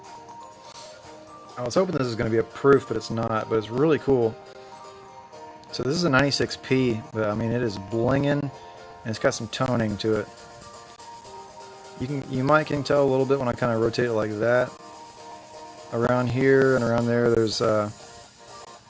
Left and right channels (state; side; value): identical; both; correlation 1.00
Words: I was hoping this was going to be a proof, but it's not, but it's really cool. So this is a 96p, but I mean it is blinging, and it's got some toning to it. You might can tell a little bit when I kind of rotate it like that. Around here and around there, there's some